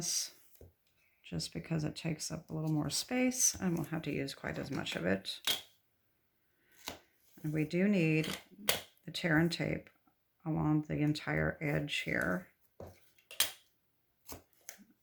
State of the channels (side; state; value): both; identical; correlation 1.00